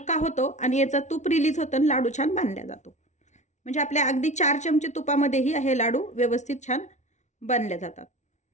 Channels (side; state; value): right; late; 0.34 ms